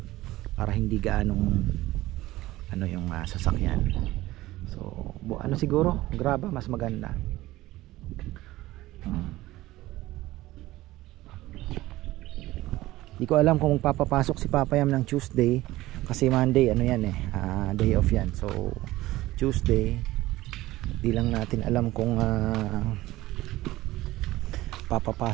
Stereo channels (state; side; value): quieter; left; 17.2 dB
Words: Para hindi gaanong yung sasakyan. So siguro graba mas maganda. Hindi ko alam kung magpapapasok si Papa Yam ng Tuesday. Kasi Monday day off yan. So Tuesday di lang natin alam kung